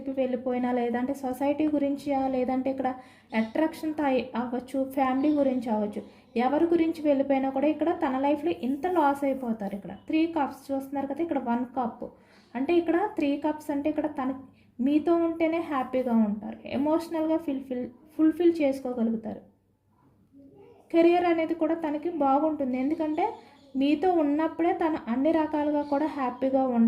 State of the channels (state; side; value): identical; both; correlation 1.00